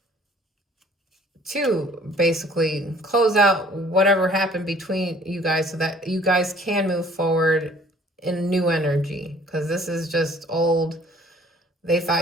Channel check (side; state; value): both; normal; correlation 0.55